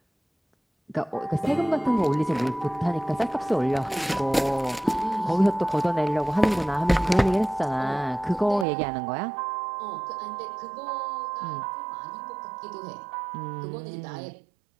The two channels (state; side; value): drops out; left; at 8.7 s